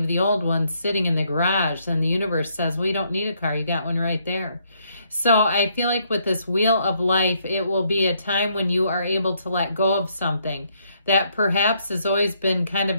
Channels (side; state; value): both; inverted; correlation -0.72